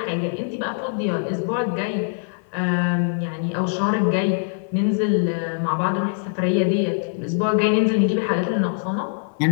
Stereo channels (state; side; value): silent; right; 57 dB below the other